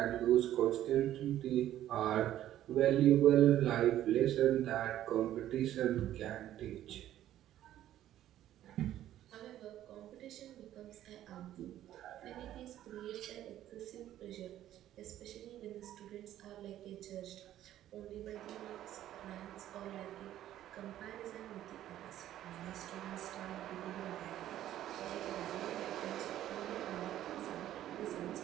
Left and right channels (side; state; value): left; quieter; 12.5 dB